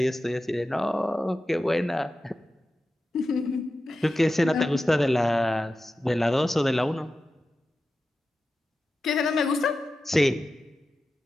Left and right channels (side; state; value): both; normal; correlation 0.93